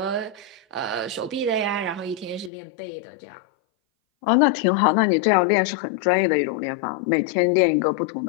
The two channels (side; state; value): right; drops out; at 2.5 s